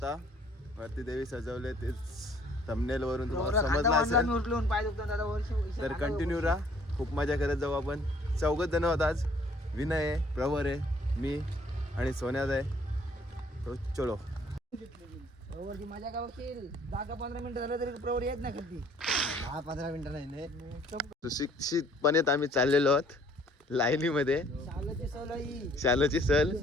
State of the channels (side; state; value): both; normal; correlation 0.59